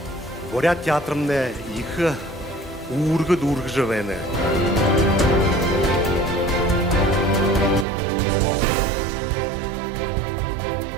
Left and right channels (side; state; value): left; drops out; at 7.9 s